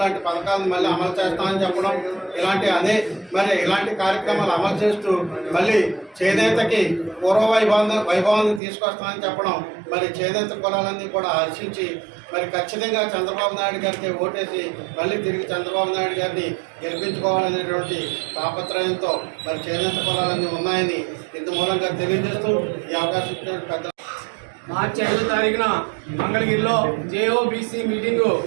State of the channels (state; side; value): drops out; left; at 8.6 s